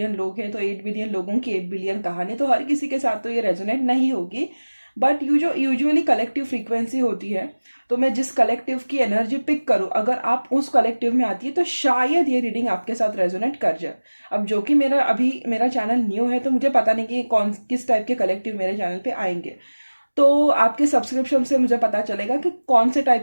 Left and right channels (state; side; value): inverted; both; correlation -1.00